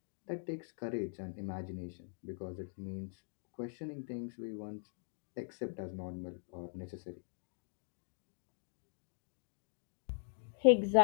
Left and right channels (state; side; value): silent; right; digital silence